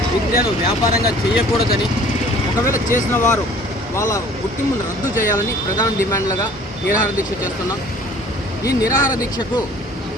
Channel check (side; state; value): both; normal; correlation 0.51